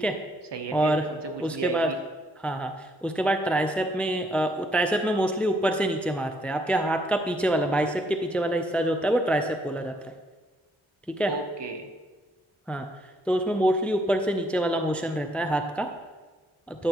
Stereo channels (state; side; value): normal; both; correlation 0.70